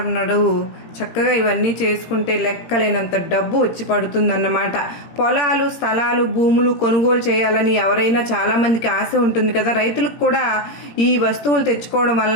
నాడు చక్కగా ఇవన్నీ చేసుకుంటే లెక్కలేనంత డబ్బు వచ్చి పడుతుందన్నమాట. పొలాలు, స్థలాలు, భూములు కొనుగోలు చేయాలని ఎవరైనా చాలామందికి ఆశ ఉంటుంది కదా! రైతులకు కూడా ఈ వస్తువులు తెచ్చుకోవడం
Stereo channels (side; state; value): right; late; 17 ms